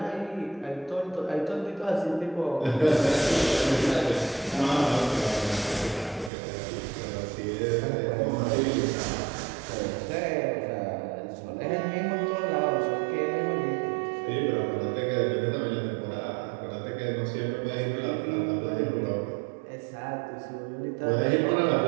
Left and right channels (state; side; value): drops out; left; at 6.3 s